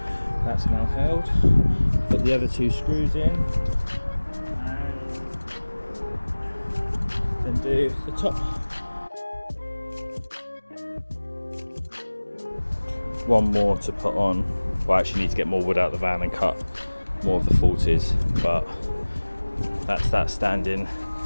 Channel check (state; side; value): inverted; both; correlation -1.00